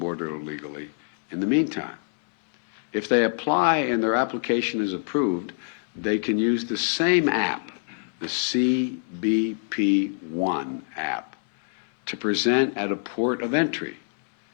illegally in the meantime. If they apply and their application is approved, they can use the same app, the CBP1 app, to present at a port of entry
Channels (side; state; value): right; silent; digital silence